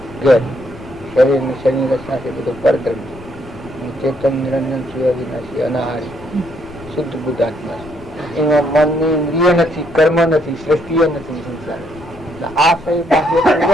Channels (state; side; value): noise; left; rumble, 19 dB below the sound